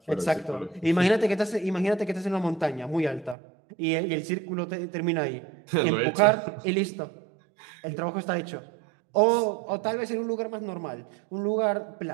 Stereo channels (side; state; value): left; drops out; at 3.4 s